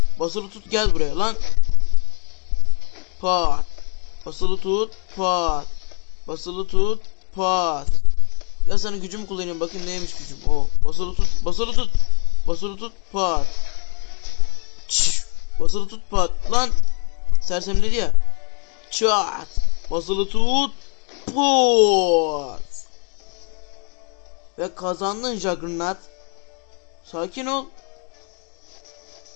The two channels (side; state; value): right; quieter; 37.6 dB